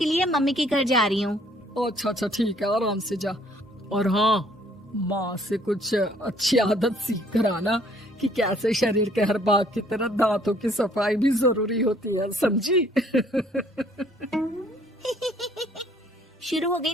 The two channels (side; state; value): both; normal; correlation 0.61